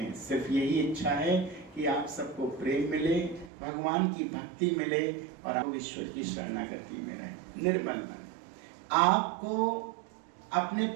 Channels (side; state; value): left; drops out; at 3.5 s